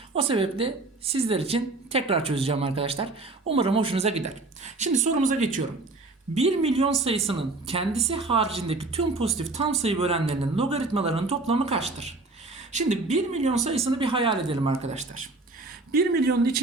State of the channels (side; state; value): left; quieter; 3.3 dB